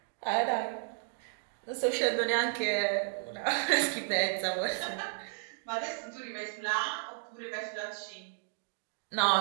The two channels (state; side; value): silent; left; 56 dB below the other